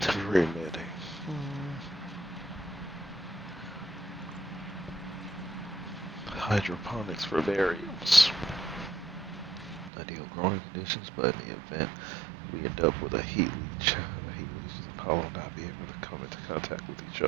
Remitting. Hydroponics for variants. Ideal growing conditions, but in the event we end up with a heat leech, the heat leech and pollen will not be able to come into contact with each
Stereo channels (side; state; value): left; drops out; at 9.9 s